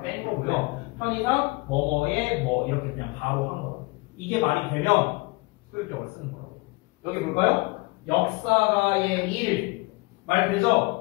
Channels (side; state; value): right; quieter; 25.4 dB